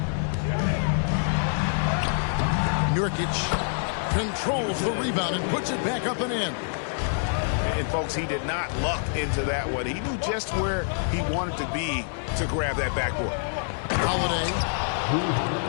Nurkic controls the rebound and puts it back up and in. And, folks, he did not luck into that one. He knew just where he wanted to be to grab that backboard. Holiday.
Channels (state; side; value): silent; right; digital silence